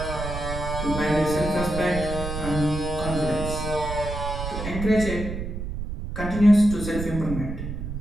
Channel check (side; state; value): right; noise; rumble, 6 dB below the sound